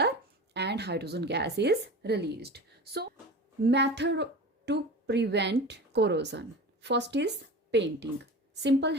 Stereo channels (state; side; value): normal; both; correlation 0.33